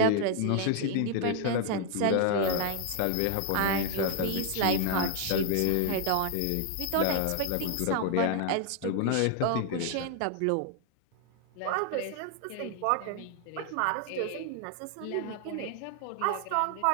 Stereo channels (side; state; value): both; different; correlation 0.00